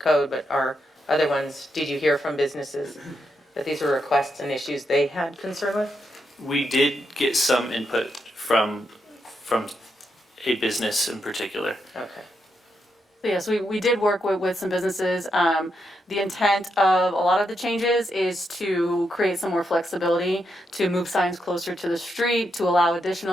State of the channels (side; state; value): both; normal; correlation 0.82